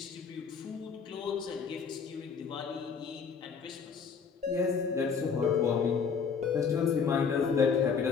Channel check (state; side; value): quieter; right; 6.0 dB